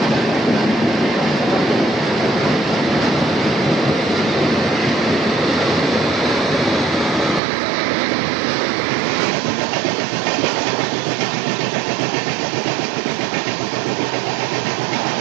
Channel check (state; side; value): drops out; left; at 7.4 s